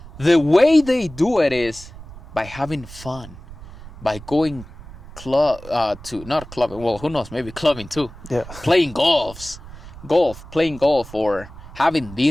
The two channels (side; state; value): right; noise; rumble, 16 dB below the sound